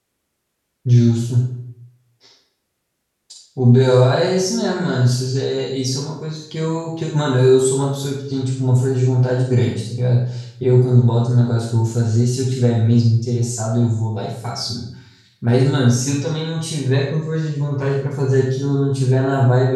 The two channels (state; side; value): identical; both; correlation 1.00